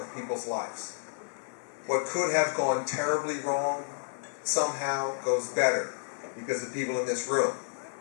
people's lives. What could have gone terribly wrong somehow goes better because of people in this room.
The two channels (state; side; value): silent; right; 56 dB below the other